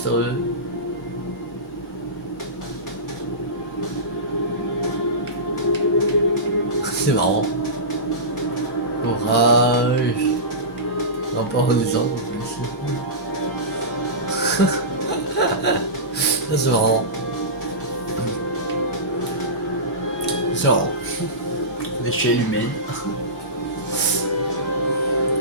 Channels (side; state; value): both; normal; correlation -0.20